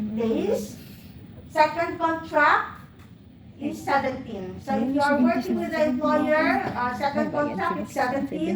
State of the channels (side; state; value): both; identical; correlation 1.00